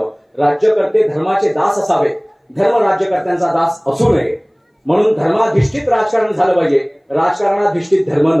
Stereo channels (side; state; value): both; identical; correlation 1.00